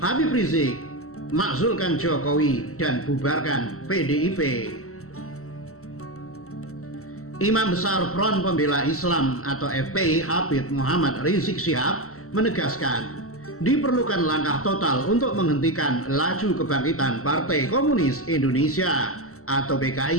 Habib Rizik makzulkan Jokowi dan bubarkan PDIP. Imam Besar Front Pembela Islam atau FPI Habib Muhammad Rizik Syihab menegaskan diperlukan langkah total untuk menghentikan laju kebangkitan Partai Komunis Indonesia atau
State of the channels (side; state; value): right; late; 0.63 ms